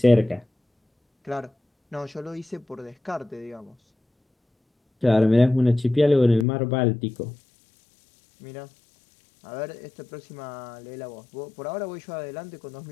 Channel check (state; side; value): drops out; right; at 6.5 s